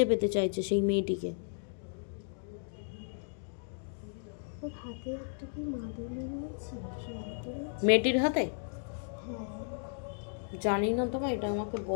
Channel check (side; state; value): right; silent; digital silence